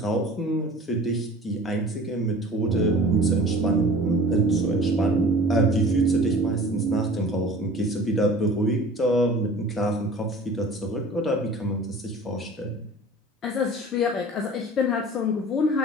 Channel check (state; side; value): normal; both; correlation 0.43